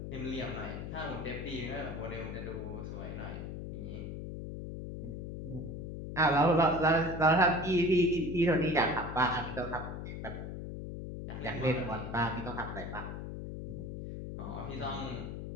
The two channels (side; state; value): left; noise; hum, 7 dB below the sound